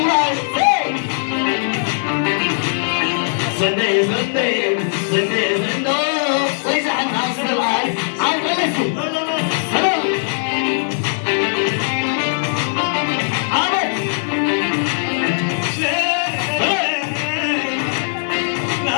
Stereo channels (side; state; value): right; silent; digital silence